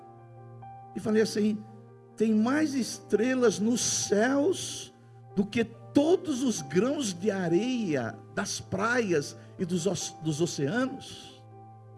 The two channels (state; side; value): identical; both; correlation 1.00